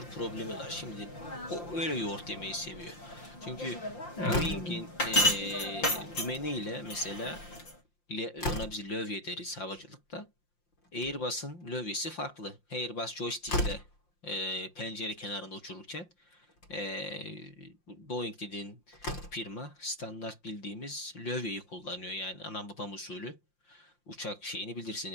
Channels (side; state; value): right; late; 5.7 ms